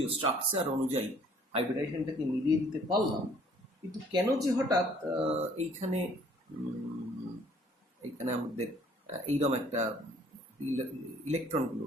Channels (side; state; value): both; normal; correlation 0.58